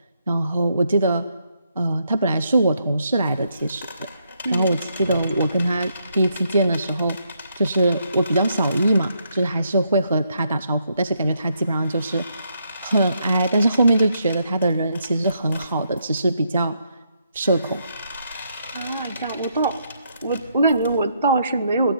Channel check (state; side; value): inverted; both; correlation -0.76